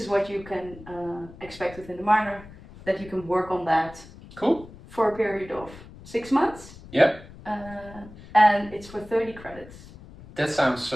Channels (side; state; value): left; noise; rumble, 18 dB below the sound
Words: what you can expect within the minor, that you can work on that. Cool. For a period of 6 months. Yeah. And it's for 30 credits. That sounds